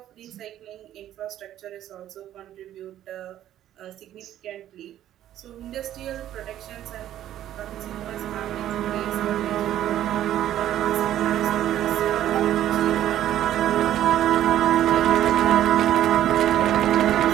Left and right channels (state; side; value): quieter; left; 12.1 dB